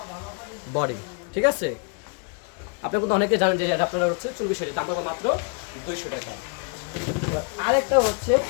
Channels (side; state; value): right; quieter; 37.2 dB